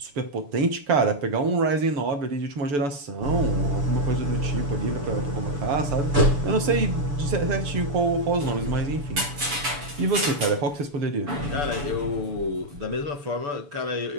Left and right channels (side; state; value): left; late; 6.9 ms